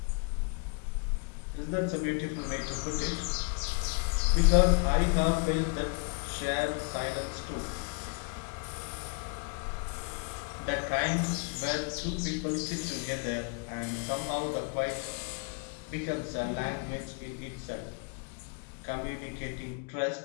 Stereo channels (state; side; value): quieter; right; 35.3 dB